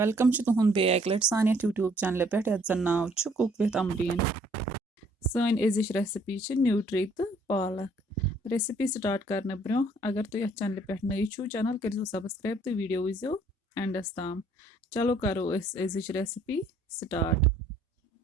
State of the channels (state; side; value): normal; both; correlation 0.62